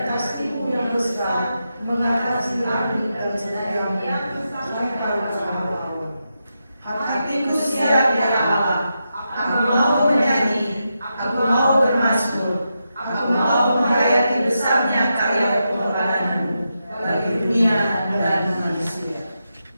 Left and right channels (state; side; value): inverted; both; correlation -0.86